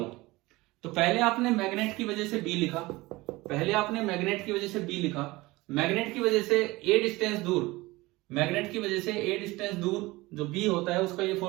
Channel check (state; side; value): quieter; left; 20.9 dB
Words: तो पहले आपने मैग्नेट की वजह से बी लिखा, मैग्नेट की वजह से ए डिस्टेंस दूर जो बी होता है उसका ये